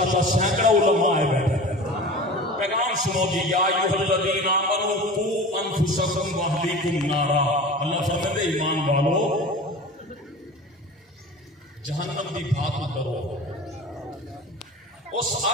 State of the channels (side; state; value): both; normal; correlation 0.36